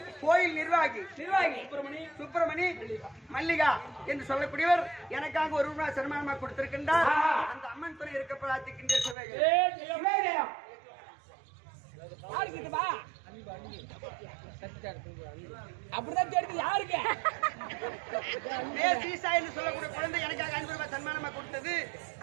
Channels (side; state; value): left; drops out; at 9.2 s